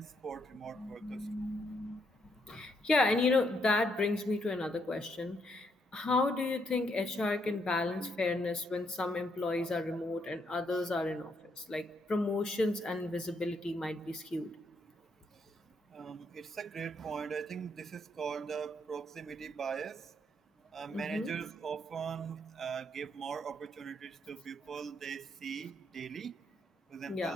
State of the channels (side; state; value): both; normal; correlation 0.75